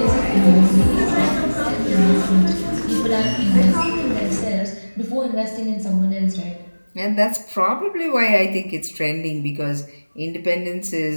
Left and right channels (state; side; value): inverted; both; correlation -1.00